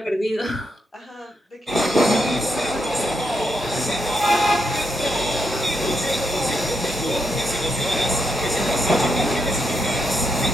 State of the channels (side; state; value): both; normal; correlation 0.81